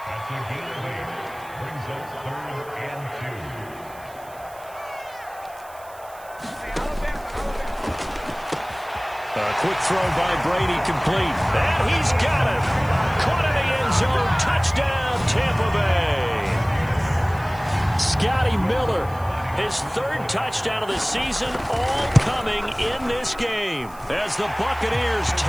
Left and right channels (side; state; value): right; noise; hiss, 23 dB below the sound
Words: A quick throw by Brady complete. And he's got it. Caught in the end zone. Touchdown, Tampa Bay. Scotty Miller, his 3rd touchdown of the season, all coming in this game as the Buccaneers